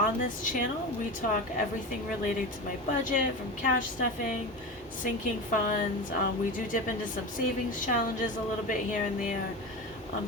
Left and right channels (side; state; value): both; normal; correlation 0.25